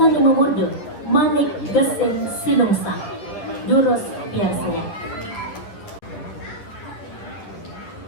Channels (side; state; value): right; late; 10 ms